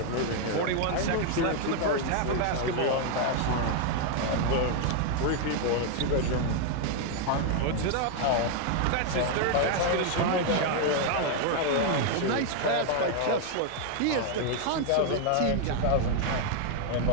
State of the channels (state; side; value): different; both; correlation 0.00